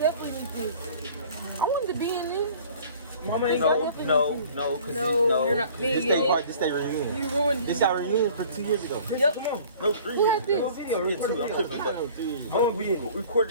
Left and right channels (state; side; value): inverted; both; correlation -0.49